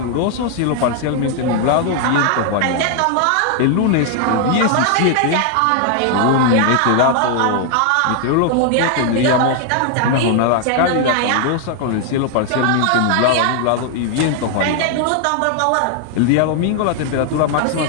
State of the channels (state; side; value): different; both; correlation 0.00